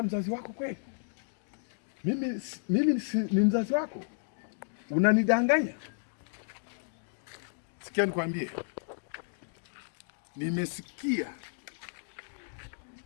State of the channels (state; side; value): silent; right; digital silence